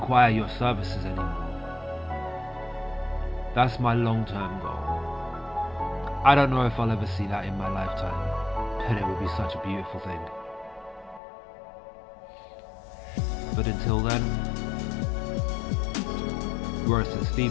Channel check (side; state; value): right; drops out; at 11.2 s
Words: your services anymore. That's my long-term goal. I don't know if I'll ever see that in my lifetime, but it would be such a beautiful thing. But until then, we're at St.